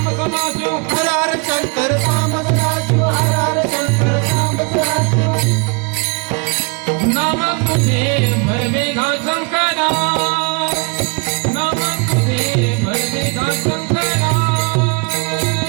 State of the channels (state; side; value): quieter; left; 31.7 dB